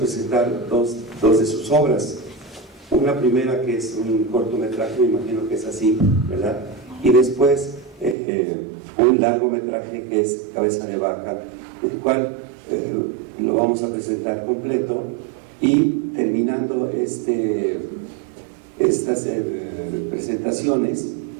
dos de sus obras. Una primera que es un cortometraje, me imagino que es así, ¿verdad? Y después un largometraje que es Cabeza de Vaca, el cual lo vamos a presentar completo, y terminando estas presentaciones,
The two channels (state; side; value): drops out; left; at 8.2 s